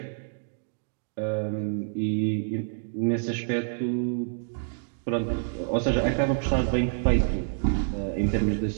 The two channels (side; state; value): left; silent; digital silence